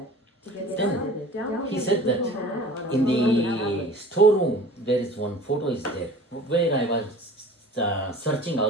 To get Then started, download he said that the in the storeroom there is one photo is there where I was searching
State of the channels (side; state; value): both; normal; correlation 0.43